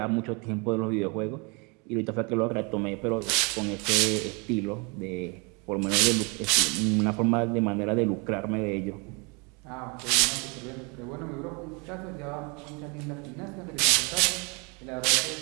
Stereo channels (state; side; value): quieter; left; 31.2 dB